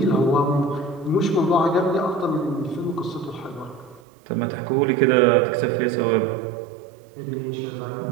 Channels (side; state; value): left; drops out; at 4.0 s